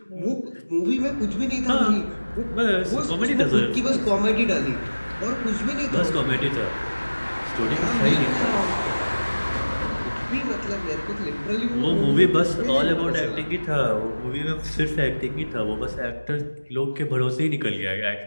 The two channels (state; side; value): inverted; both; correlation -1.00